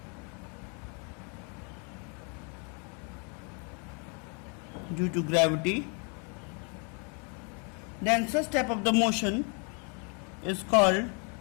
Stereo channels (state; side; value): quieter; right; 36.7 dB